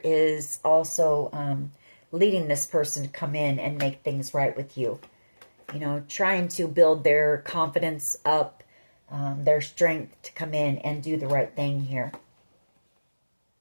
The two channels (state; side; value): inverted; both; correlation -1.00